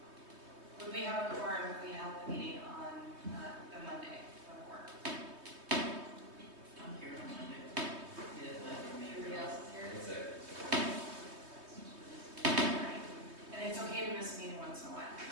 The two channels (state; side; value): late; left; 3.2 ms